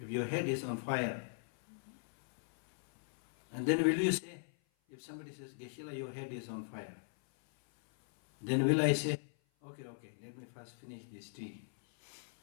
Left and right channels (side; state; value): right; silent; 52 dB below the other